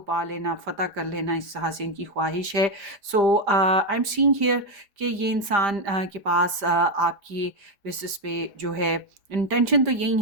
पा लेना, फ़तह कर लेना, इस तरह से इनकी ख्वाहिश है। सो आई एम सीइंग हियर कि ये इंसान के पास आपकी बेसिस पे जो है इंटेंशन तो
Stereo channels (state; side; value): late; left; 5.0 ms